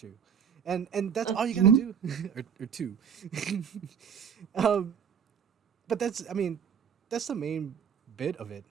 and that's all you gotta do, or two. um, but that's the main bit of it.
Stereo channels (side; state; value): left; quieter; 7.6 dB